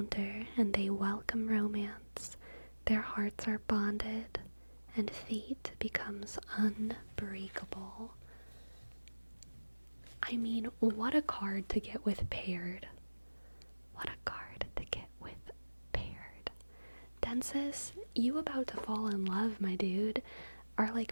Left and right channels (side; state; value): both; inverted; correlation -1.00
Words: and they welcome romance, their hearts are bonded and fate becomes unbreakable. I mean, what a card to get with paired. What a card to get with paired. Densis, you about to fall in love, my dude. Or